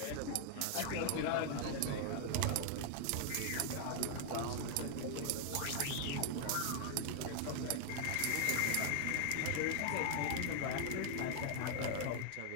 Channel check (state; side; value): different; both; correlation 0.00